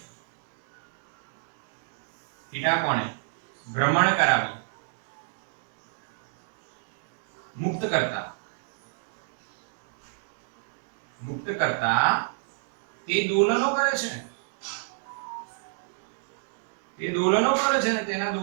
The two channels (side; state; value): left; silent; digital silence